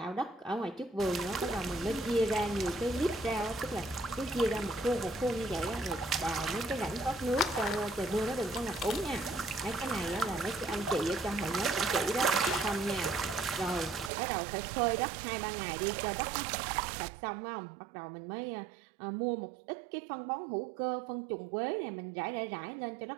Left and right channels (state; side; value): drops out; left; at 14.1 s